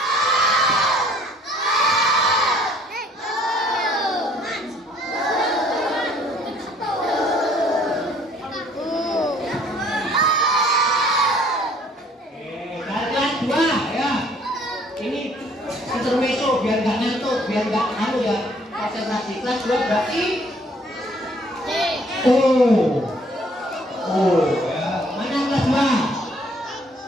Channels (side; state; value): both; normal; correlation 0.60